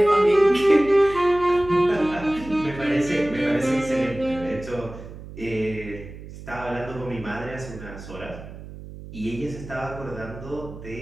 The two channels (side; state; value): right; noise; hum, 14 dB below the sound